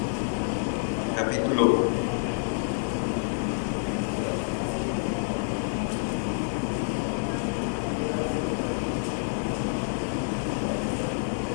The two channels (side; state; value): right; silent; digital silence